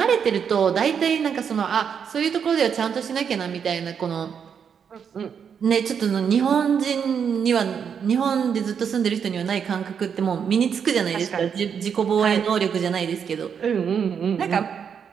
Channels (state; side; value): quieter; left; 7.2 dB